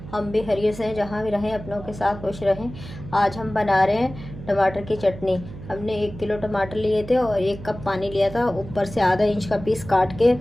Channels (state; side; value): noise; right; hum, 13 dB below the sound